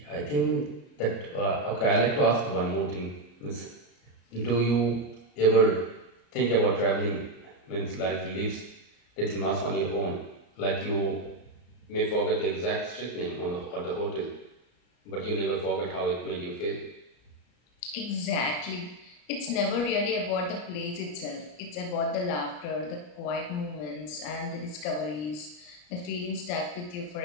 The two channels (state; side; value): late; right; 34 ms